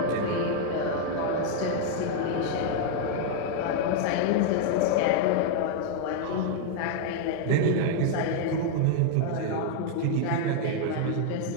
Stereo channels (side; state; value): both; different; correlation 0.00